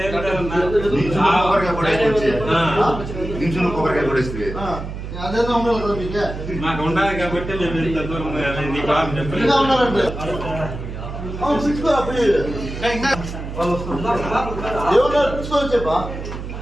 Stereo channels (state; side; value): noise; right; hum, 8 dB below the sound